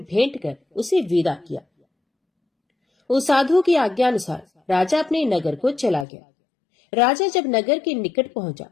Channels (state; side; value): drops out; right; at 6.1 s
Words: भेंट कर उसे विदा किया। उस साधु की आज्ञा अनुसार राजा अपने नगर को चला गया। राजा जब नगर के निकट पहुंचा